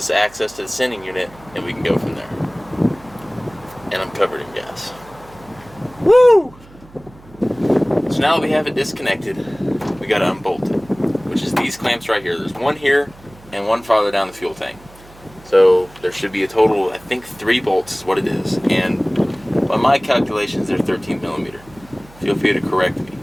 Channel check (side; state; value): right; noise; hum, 23 dB below the sound